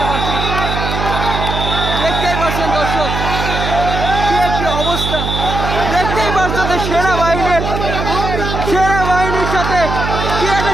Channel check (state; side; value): noise; right; hum, 3 dB below the sound